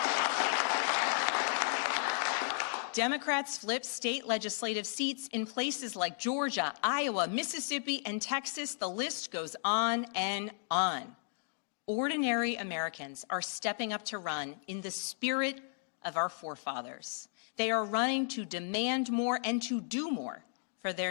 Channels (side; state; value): right; silent; digital silence